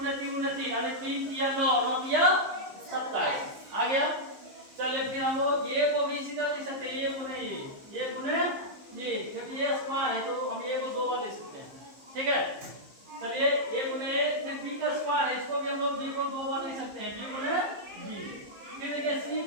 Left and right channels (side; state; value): left; late; 15 ms